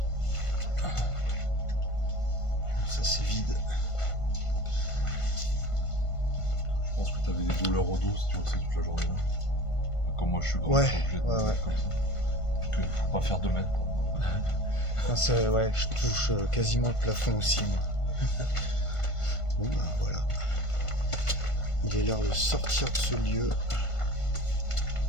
Ça c'est vide. Je pense que t'avais des douleurs au dos si tu restais toute la journée là. Comme moi je suis grand, Ouais, je suis obligé de me mettre comme ça. Donc faut pas faire 2 mètres. Quoi. Non, ouais, je touche quasiment le plafond aussi moi. Bon bah voilà. Il est l'heure de sortir de ce lieu.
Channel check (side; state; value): right; late; 1.5 ms